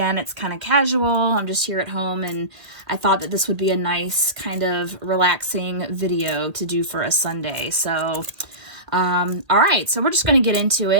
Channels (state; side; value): late; left; 1.8 ms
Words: it's kind of casual. I'm just here at home, and I thought that this would be a nice kind of relaxing video to do for a Sunday. So all right, so we're just going to get into